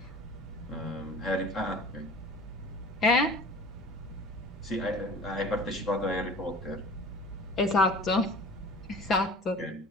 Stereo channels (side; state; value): both; normal; correlation 0.43